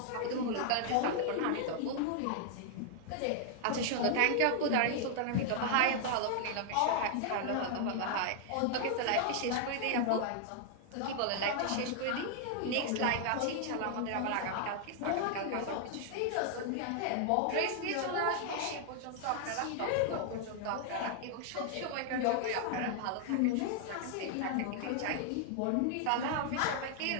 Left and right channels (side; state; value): both; different; correlation 0.00